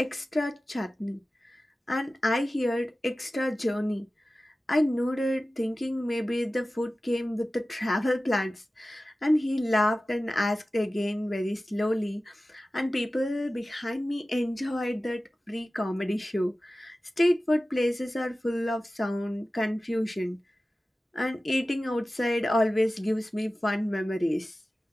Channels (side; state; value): both; normal; correlation 0.96